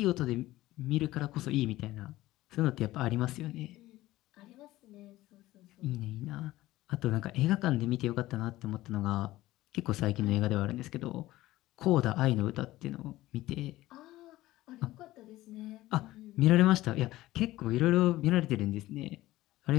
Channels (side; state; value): right; quieter; 16.7 dB